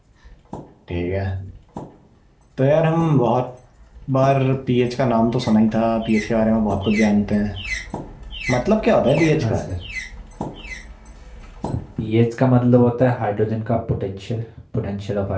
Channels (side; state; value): both; identical; correlation 1.00